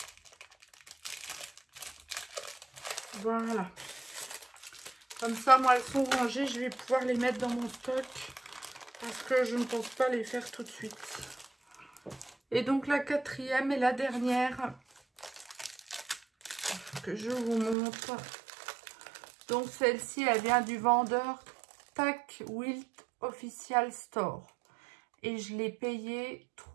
Voilà. Comme ça, moi, elles sont rangées. Je vais pouvoir les mettre dans mon stock. Parce que je ne pense pas les faire tout de suite. Et donc, la quatrième et la dernière. je vous montre. Donc celle-ci, elle vient du vendeur Tack Wilt Official Store. Et je l'ai payée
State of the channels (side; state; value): left; drops out; at 17.8 s